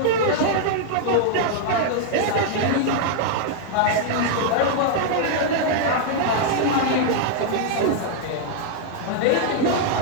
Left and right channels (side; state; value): both; different; correlation 0.00